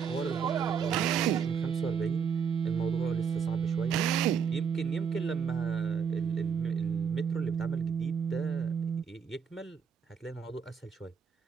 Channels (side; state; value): left; quieter; 6.7 dB